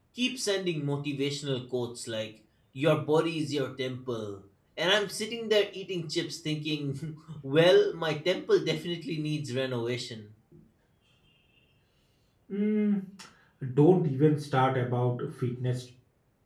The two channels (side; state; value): both; identical; correlation 1.00